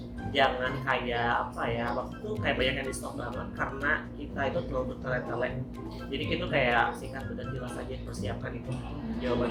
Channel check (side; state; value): both; identical; correlation 1.00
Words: jangan kayak apa ya, waktu itu kayak banyak yang di stop banget karena kita itu terlalu bertele-tele. Jadi kita kayak singkat dan jelas aja, persiapkan itu